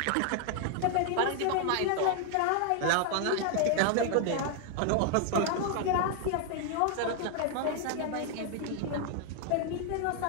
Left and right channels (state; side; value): different; both; correlation 0.00